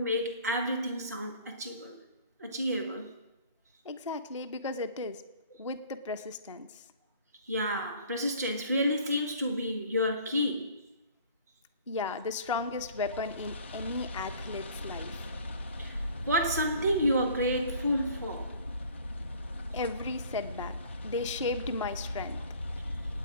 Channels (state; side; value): inverted; both; correlation -0.51